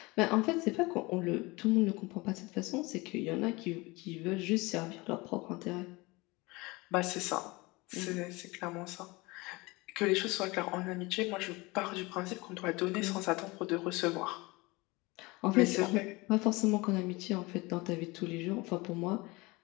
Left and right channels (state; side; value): quieter; right; 23.6 dB